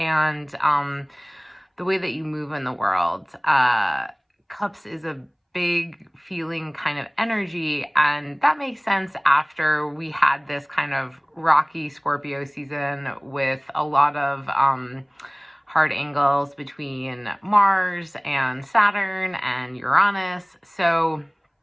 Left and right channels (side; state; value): both; identical; correlation 1.00